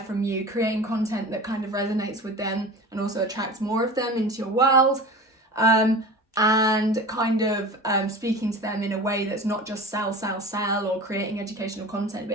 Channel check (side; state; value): both; normal; correlation 0.35